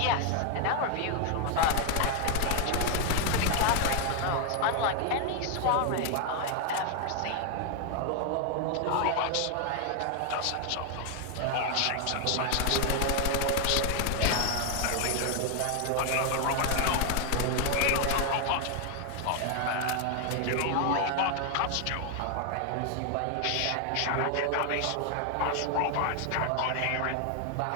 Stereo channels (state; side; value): different; both; correlation 0.00